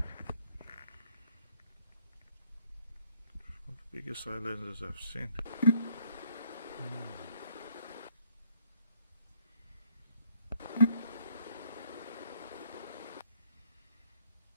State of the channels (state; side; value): inverted; both; correlation -0.66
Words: One of the biggest eye lenses I've seen.